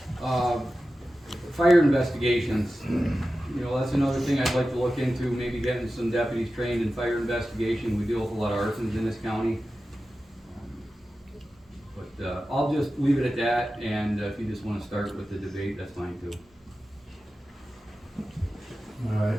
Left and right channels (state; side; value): normal; both; correlation 0.94